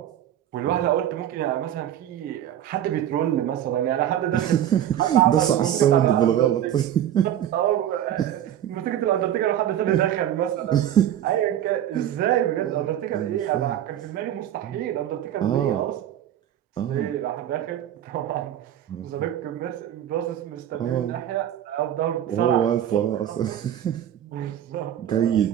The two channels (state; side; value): quieter; left; 10.9 dB